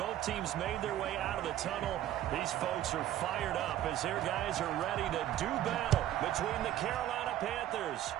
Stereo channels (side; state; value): left; quieter; 12.6 dB